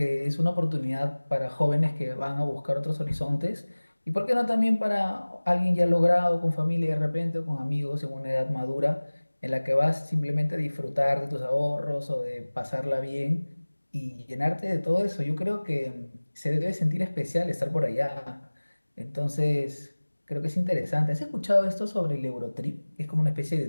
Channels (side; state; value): both; inverted; correlation -1.00